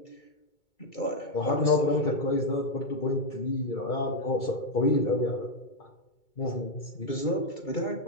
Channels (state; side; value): late; right; 2.3 ms